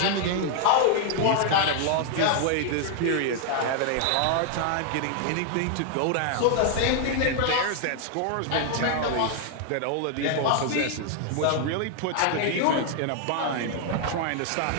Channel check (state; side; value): different; both; correlation 0.00